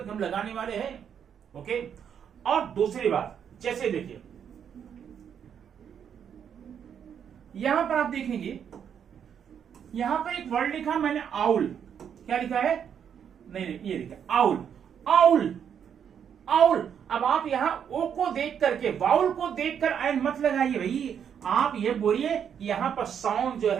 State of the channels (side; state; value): left; quieter; 8.2 dB